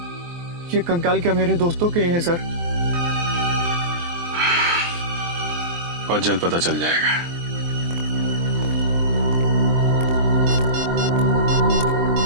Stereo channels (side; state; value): left; late; 23 ms